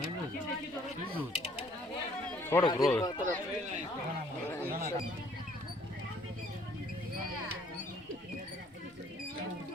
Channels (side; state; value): both; normal; correlation 0.61